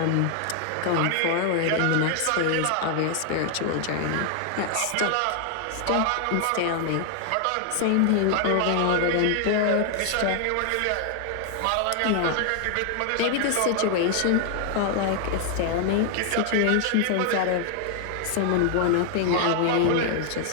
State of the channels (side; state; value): both; different; correlation 0.00